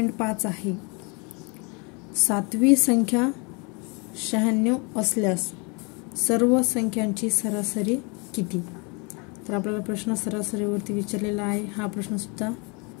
आहे। 7वी संख्या 96 असल्यास सर्व संख्यांची सरासरी किती। तर आपल्याला प्रश्न सरासरीवरती विचारलेला आहे। हा प्रश्न सुद्धा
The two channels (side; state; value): right; quieter; 31.5 dB